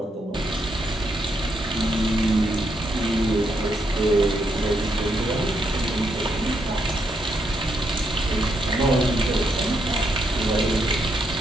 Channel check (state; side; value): normal; both; correlation 0.78